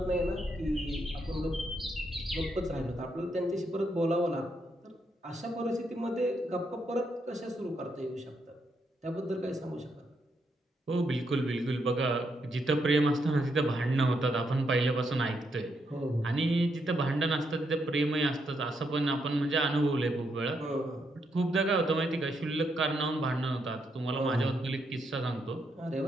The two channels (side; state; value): both; normal; correlation 0.78